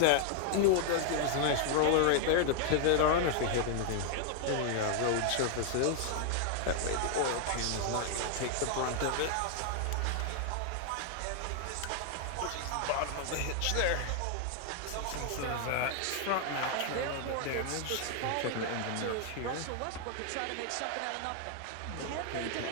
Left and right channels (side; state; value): both; different; correlation 0.00